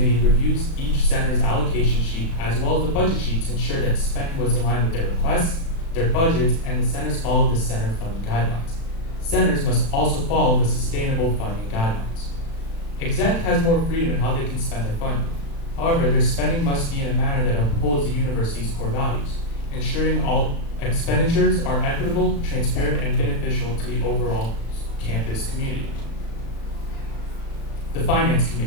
reviews each center's allocation sheet as well as the budget sheet to ensure that spending was in line with their requests, their budgets, and the centers follow the center funding guidelines. Centers must also follow the sustainable funding guidelines. Exec has more freedom in how they can spend their funding. However, their spending must be in a manner that upholds the university's core values, ensuring all expenditures are equitable, transparent, and beneficial to the overall campus community. The Finance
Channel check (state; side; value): late; right; 36 ms